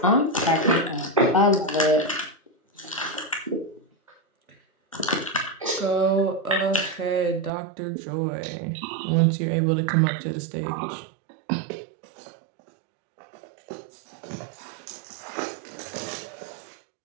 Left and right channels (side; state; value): left; drops out; at 7.5 s